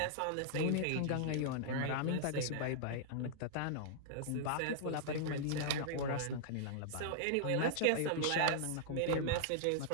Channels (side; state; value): both; different; correlation -0.01